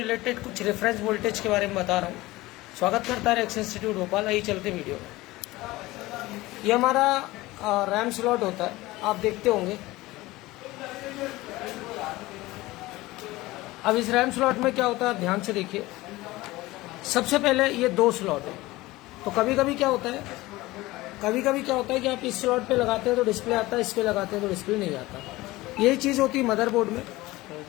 कुछ reference voltage के बारे में बता रहा हूँ। स्वागत करता है एक्स इंस्टीट्यूट भोपाल। आइए चलते वीडियो में। ये हमारा रैम स्लॉट होता है, आप देखते होंगे। अब इस रैम स्लॉट में क्या होता है, आप ध्यान से देखिए। सबसे पहले ये दो स्लॉट है, तो कभी कभी क्या होता है कि आप इस स्लॉट पे लगाते हैं तो डिस्प्ले आता है, इस पे लगाते हैं तो डिस्प्ले नहीं आता। यही चीज़ होती है मदरबोर्ड में।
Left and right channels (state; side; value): quieter; right; 19.3 dB